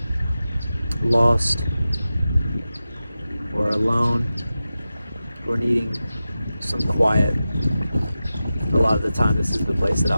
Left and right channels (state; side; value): inverted; both; correlation -0.94